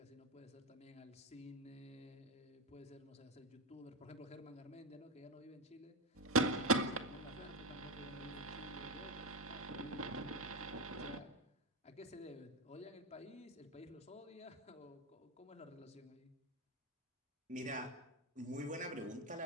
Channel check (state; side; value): normal; both; correlation 0.13